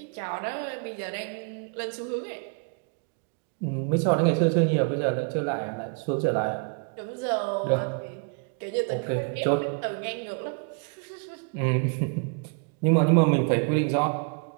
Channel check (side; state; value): left; quieter; 39.4 dB